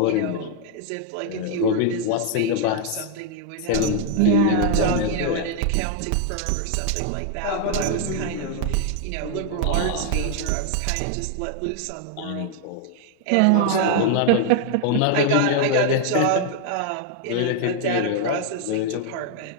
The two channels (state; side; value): different; both; correlation 0.00